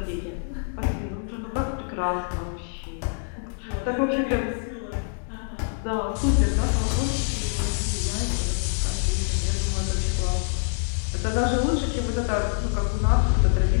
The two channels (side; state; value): right; silent; digital silence